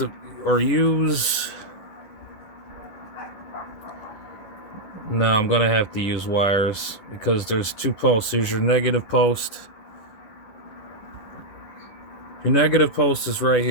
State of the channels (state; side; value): late; right; 10 ms